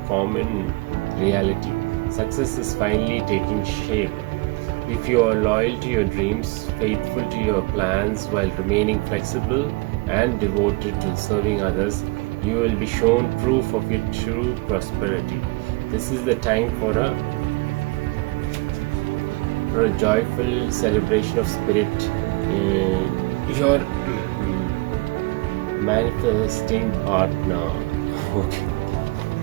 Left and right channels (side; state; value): left; quieter; 25.1 dB